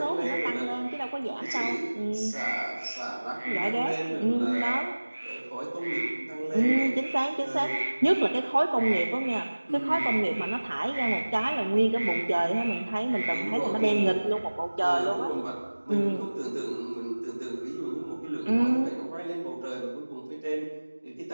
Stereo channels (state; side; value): inverted; both; correlation -1.00